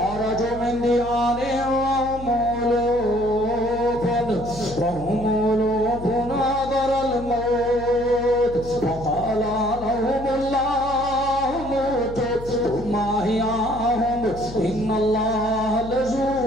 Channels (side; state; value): left; noise; hum, 13 dB below the sound